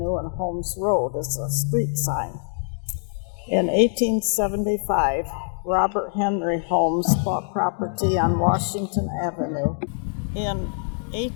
and Holmes Road is a street sign. In 1875, Robert Henry Holmes bought property on Washington Avenue. In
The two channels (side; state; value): right; silent; 60 dB below the other